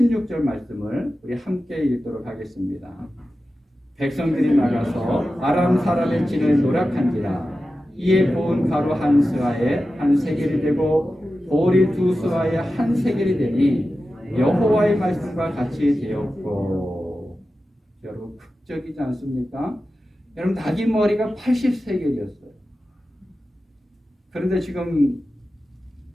말씀을 우리 함께 읽도록 하겠습니다. 백성들이 나가서 아람 사람의 진을 노략한지라. 이에 고운 가루 한 스아에 한 세겔이 되고 보리 두 스아에 한 세겔이 되니 여호와의 말씀과 같이 되었고. 여러분 극적이지 않습니까? 여러분 나귀 머리가 80세겔이었어요. 그런데 지금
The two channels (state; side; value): normal; both; correlation 0.93